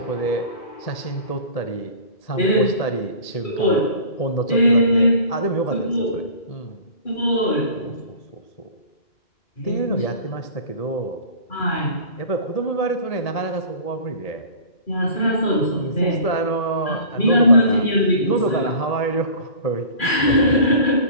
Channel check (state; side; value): late; right; 2.4 ms